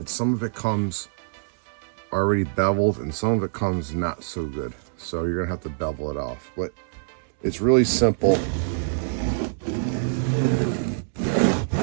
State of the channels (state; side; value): silent; left; digital silence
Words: some of it comes already beveled and some of it comes not so good. So you're gonna have to bevel it off. But it's really simple.